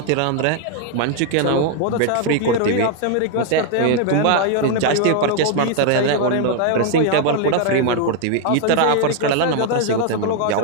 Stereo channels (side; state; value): both; different; correlation 0.00